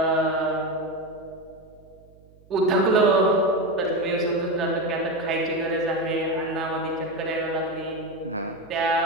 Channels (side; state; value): right; noise; hum, 27 dB below the sound